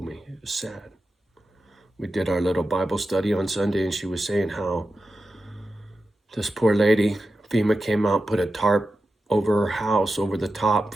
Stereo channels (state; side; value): normal; both; correlation 0.92